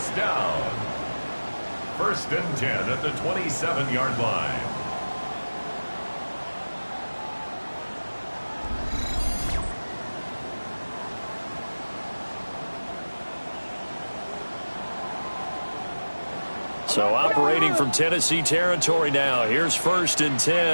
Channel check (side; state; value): both; inverted; correlation -1.00